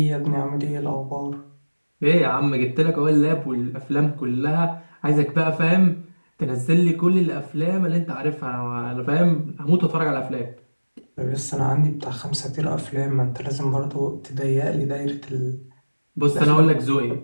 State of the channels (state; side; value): inverted; both; correlation -1.00